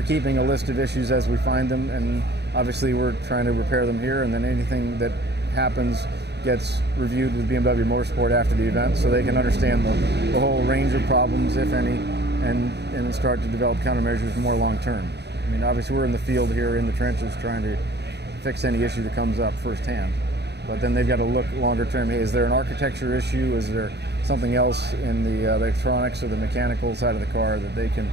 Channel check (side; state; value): left; late; 0.49 ms